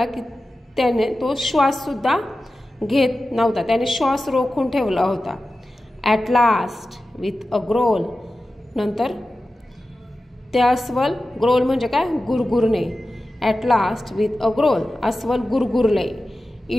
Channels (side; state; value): both; normal; correlation 0.94